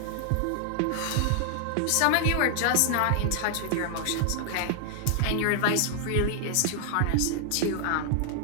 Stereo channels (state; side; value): different; both; correlation 0.00